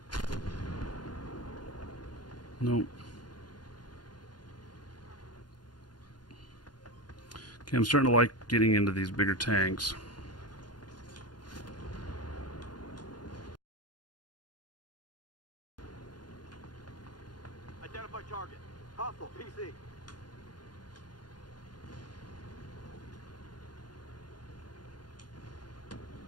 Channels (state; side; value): late; right; 0.70 ms